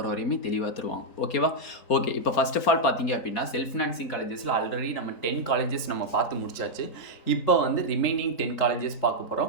வரையுமே தெளிவாக தருவாங்க. ஓகேவா? ஓகே, இப்போ ஃபர்ஸ்ட் ஆஃப் ஆல் பார்த்தீங்க அப்படின்னா, செல்ஃப் ஃபினான்சிங் காலேஜஸில் ஆல்ரெடி நம்ம 10 காலேஜஸ் நம்ம பார்த்து முடிச்சாச்சு. இப்போ வந்து ரிமைனிங் 10 காலேஜஸ் பார்க்க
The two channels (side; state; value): right; late; 4.4 ms